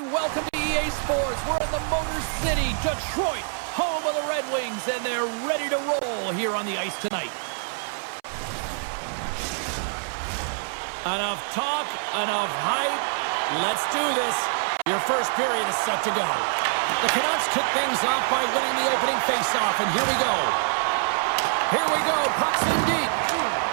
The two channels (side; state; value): left; silent; 61 dB below the other